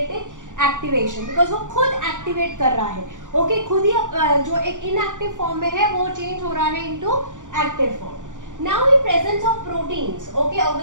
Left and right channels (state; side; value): late; left; 0.87 ms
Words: एक्टिवेशन, बिकॉज वो खुद एक्टिवेट कर रहा है. ओके, खुद ही जो एक इनएक्टिव फॉर्म में है वो चेंज हो रहा है into active form. Now in presence of proteins, okay,